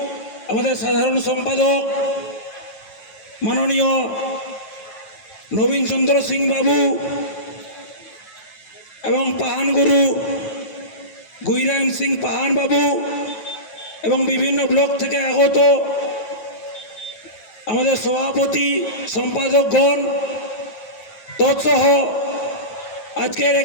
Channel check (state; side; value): late; right; 9.2 ms